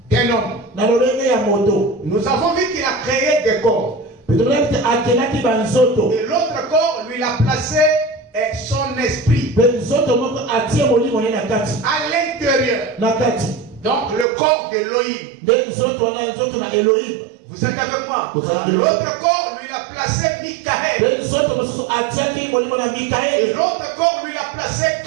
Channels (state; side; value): drops out; left; at 14.2 s